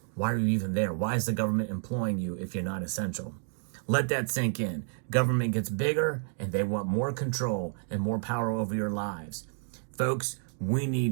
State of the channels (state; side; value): silent; left; 57 dB below the other